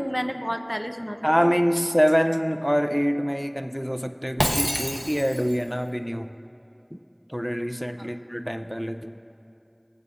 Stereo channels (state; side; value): identical; both; correlation 1.00